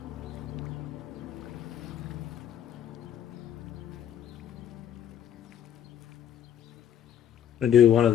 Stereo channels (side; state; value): right; quieter; 9.8 dB